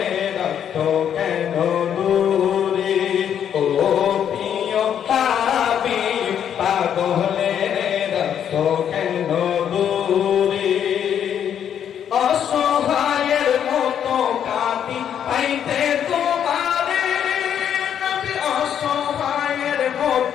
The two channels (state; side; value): quieter; right; 9.1 dB